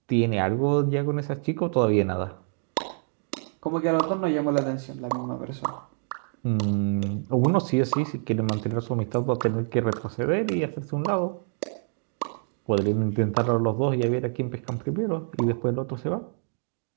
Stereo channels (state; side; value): silent; left; 60 dB below the other